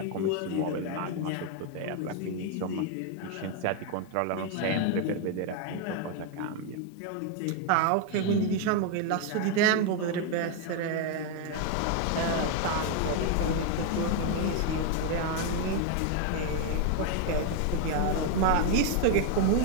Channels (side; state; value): both; different; correlation 0.01